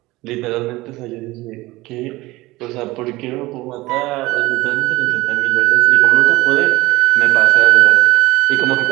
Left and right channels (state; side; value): quieter; left; 19.8 dB